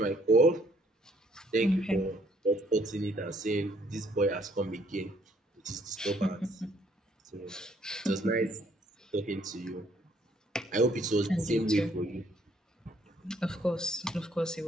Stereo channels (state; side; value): normal; both; correlation 0.65